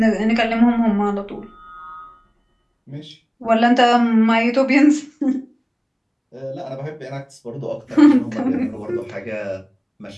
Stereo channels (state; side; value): identical; both; correlation 1.00